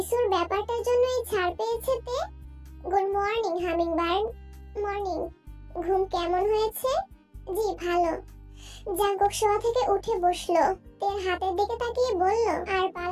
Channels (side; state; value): both; identical; correlation 1.00